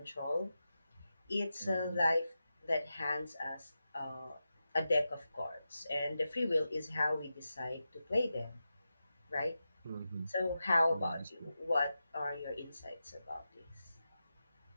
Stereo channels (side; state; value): both; inverted; correlation -0.91